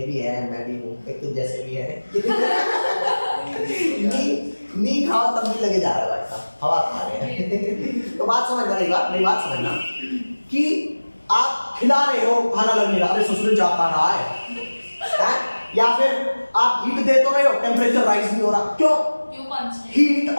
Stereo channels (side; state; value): both; inverted; correlation -1.00